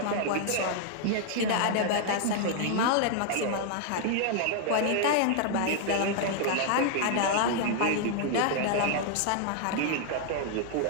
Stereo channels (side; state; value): both; different; correlation 0.00